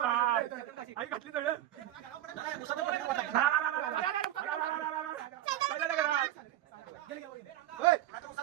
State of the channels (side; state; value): left; quieter; 13.2 dB